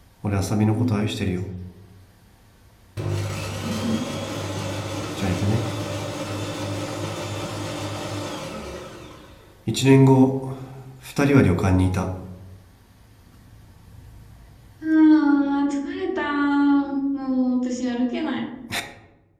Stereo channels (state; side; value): identical; both; correlation 1.00